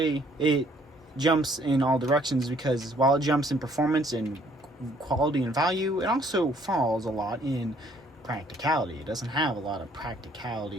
it jumps in all directions because while it jumps in performance and quality and value, it also falls a lot in practicality. It doesn't have a lot of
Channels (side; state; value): both; normal; correlation 0.63